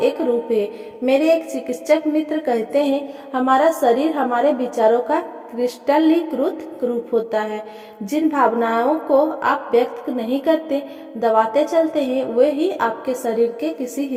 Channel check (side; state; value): both; identical; correlation 1.00